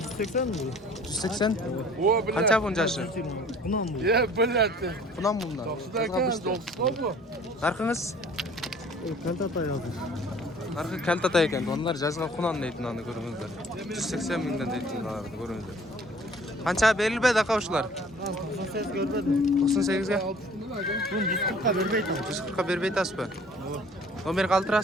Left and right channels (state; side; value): normal; both; correlation 0.52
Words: mi bu? 180. O bile. Канча бунун жашы? Bundan bu. Ya bile. Кунан бундан. 90'da kan 90 Наркыңыз? Kantata yazdı. Наркы калтата экен, onlar жазга кунан дейт мынаны көрүңүздөр. 180 миңден дейт мынаны көрүңүздөр. Канча берилбейт ака ушулар? 98 görmedim. 98ге? Bunu 140'a vermeydi. 140ка бербей атасызбы? Номер